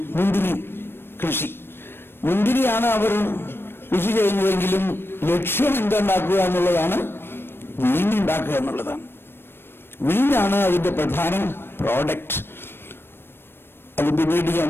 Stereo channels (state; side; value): late; right; 0.11 ms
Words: മുന്തിരി കൃഷി. മുന്തിരിയാണ് അവർ കൃഷി ചെയ്യുന്നതെങ്കിലും ലക്ഷ്യം എന്തുണ്ടാക്കുക എന്നുള്ളതാണ്, വീഞ്ഞുണ്ടാക്കുക എന്നുള്ളതാണ്. വീഞ്ഞാണ് അതിന്റെ പ്രധാന പ്രോഡക്റ്റ്. അത് പിന്നീട് ഞാൻ